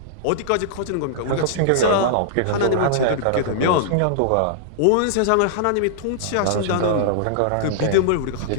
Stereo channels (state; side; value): different; both; correlation -0.01